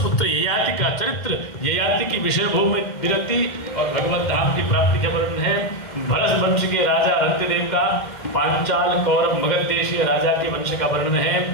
ययाति का चरित्र, ययाति की विषय भूमि विरक्ति और भगवत धाम की प्राप्ति का वर्णन है। भरत वंश के राजा रंतिदेव का, पांचाल कौरव मगध देशीय राजा के वंश का वर्णन है।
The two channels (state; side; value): late; right; 2.1 ms